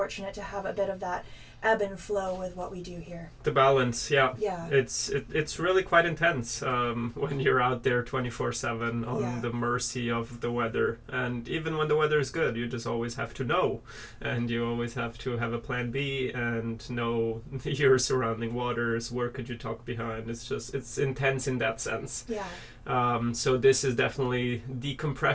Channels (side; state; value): both; identical; correlation 1.00